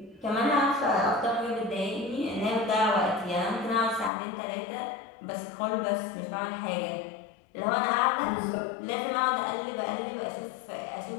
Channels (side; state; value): right; drops out; at 4.1 s